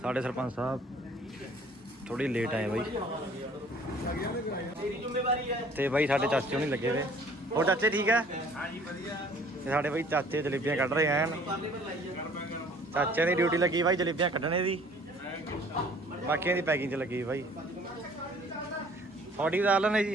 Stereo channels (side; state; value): both; normal; correlation 0.54